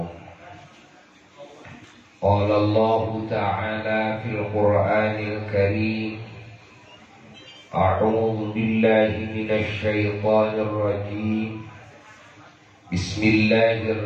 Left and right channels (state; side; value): identical; both; correlation 1.00